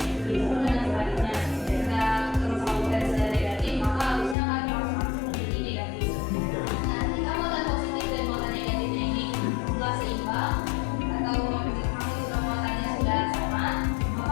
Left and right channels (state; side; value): drops out; right; at 4.4 s